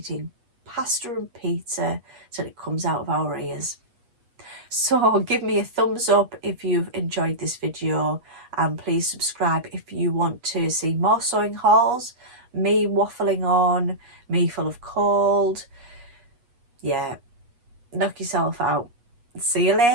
pasta and pizza till it comes out of our ears. So give me a thumbs up if you've enjoyed this video, and please subscribe if you want to see more sewing hauls, me waffling on, me full of cold. Yeah, knock yourself out. See you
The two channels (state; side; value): late; left; 8.3 ms